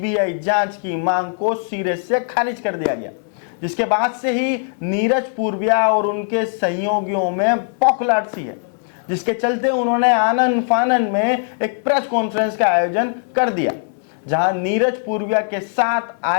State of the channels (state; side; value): silent; right; digital silence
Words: जांच की मांग को सिरे से खारिज कर दिया गया, जिसके बाद से ही नीरज पूर्विया और उनके सहयोगियों में पौखलाहट सी है, जिसके चलते उन्होंने आनन फानन में एक प्रेस कॉन्फ्रेंस का आयोजन कर दिया, जहां नीरज पूर्विया के साथ